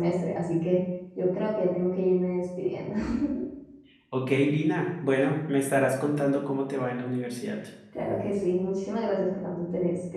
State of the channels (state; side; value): identical; both; correlation 1.00